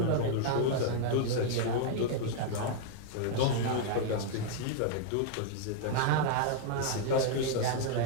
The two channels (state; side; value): different; both; correlation -0.01